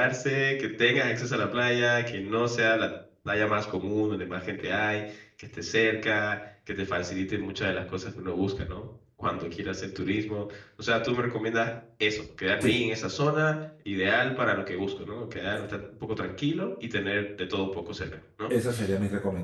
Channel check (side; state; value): both; identical; correlation 1.00